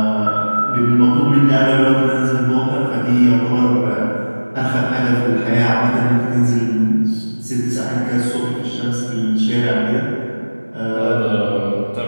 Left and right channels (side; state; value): both; inverted; correlation -1.00